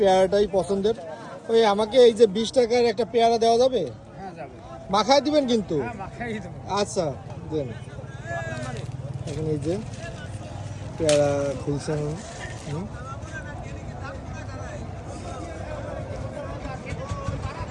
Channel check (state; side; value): identical; both; correlation 1.00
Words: পছন্দের। ওই আমাকে এই যে 20 টাকার একটা পেয়ারা দেওয়া যাবে? মাখায় দিবেন কিন্তু? আচ্ছা দেন। এখন এই যে পেয়ারা খুলছেন।